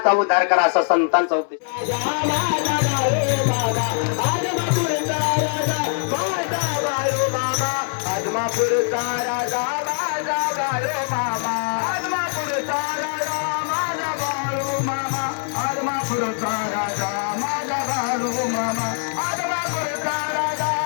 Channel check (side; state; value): right; silent; 64 dB below the other